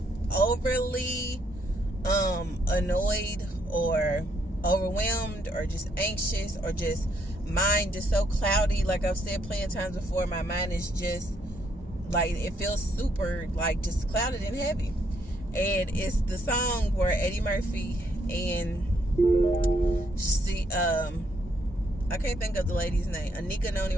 overly annoyed or overwhelmed or just anxious or just mind just so cloudy. Like I've said plenty of times before, my mind is just like, it feels super like just clouded and heavy. And it's the song where Eddie Murphy and she I can't think of the lady's name, Anika Noni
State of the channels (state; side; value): normal; both; correlation 0.72